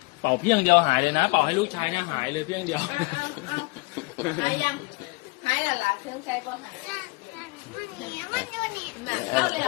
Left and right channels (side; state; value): right; quieter; 25.7 dB